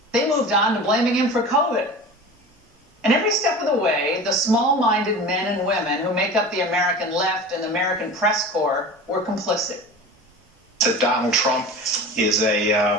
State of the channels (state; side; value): normal; both; correlation 0.35